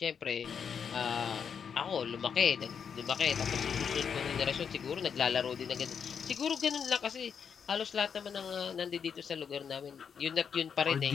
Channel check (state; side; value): quieter; right; 7.0 dB